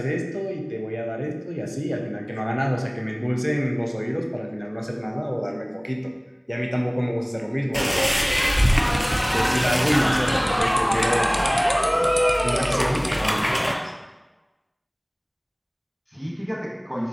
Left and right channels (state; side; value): identical; both; correlation 1.00